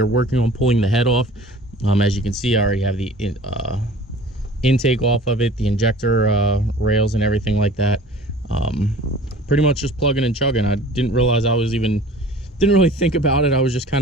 working on pulling the head off. As you can see, I already have the intake off of it, the injector rails and everything like that. Pretty much just plugging and chugging. I didn't realize didn't really think about it. I was just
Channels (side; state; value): both; normal; correlation 0.45